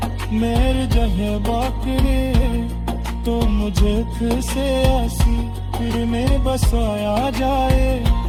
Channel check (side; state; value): both; identical; correlation 1.00